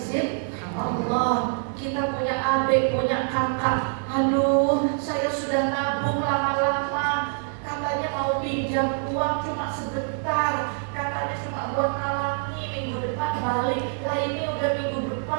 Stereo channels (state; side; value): silent; left; 57 dB below the other